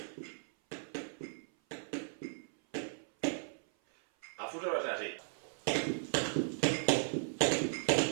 A fusas va a ser así.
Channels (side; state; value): left; silent; 53 dB below the other